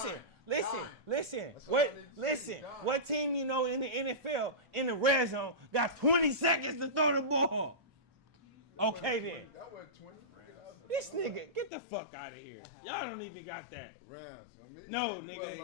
What team you know in the NFL in the red zone got 20 seconds to throw the ball? Okay then. This nigga, get the fuck out of here. Y'all don't even got that. No, nigga.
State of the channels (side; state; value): right; drops out; at 11.7 s